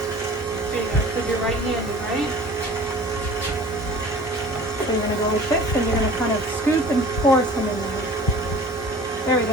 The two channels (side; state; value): both; normal; correlation 0.44